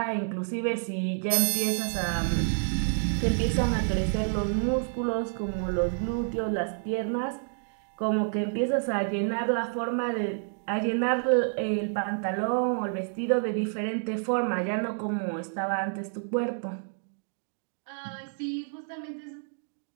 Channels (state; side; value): silent; left; digital silence